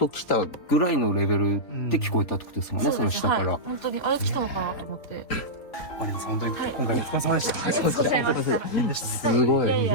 来たぐらいのレベルで聞こえたってことですもんね、その下から。本当にあれ来たのかなと思って。マリナさん本当に今回お疲れ様でした。大変でした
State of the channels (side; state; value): right; late; 3.6 ms